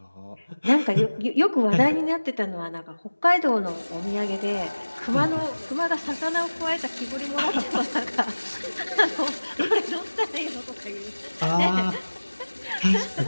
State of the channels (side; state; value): both; inverted; correlation -1.00